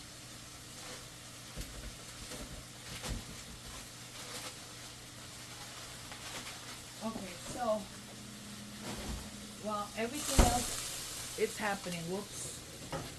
Okay, so while everything else is happening, whoops,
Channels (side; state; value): both; identical; correlation 1.00